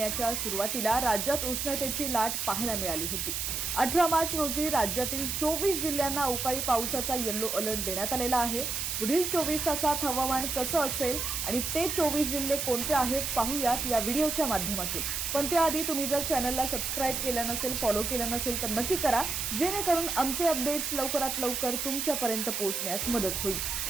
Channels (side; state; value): right; noise; hiss, 2 dB below the sound